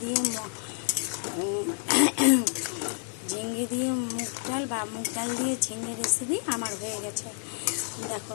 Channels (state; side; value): silent; right; 59 dB below the other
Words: দিয়ে মুগ ডাল বা মুগ ডাল দিয়ে ঝিঙে রেসিপি আমার হয়ে গেছে। দেখো